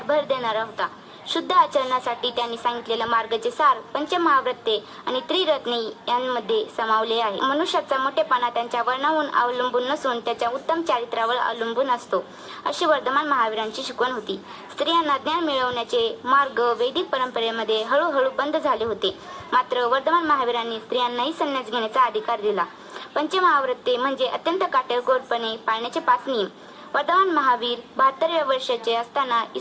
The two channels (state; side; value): identical; both; correlation 1.00